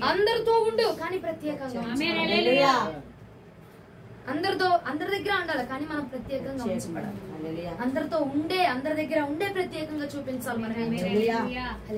అందరితో ఉండు, కానీ ప్రత్యేకంగా అందరి దగ్గర ఉండాలి, కానీ మనం ప్రత్యేకంగా ఉంచబడాలి. అందరి దగ్గర ఉండే ప్రత్యేకంగా చూపించాలి. మనం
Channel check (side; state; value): both; identical; correlation 1.00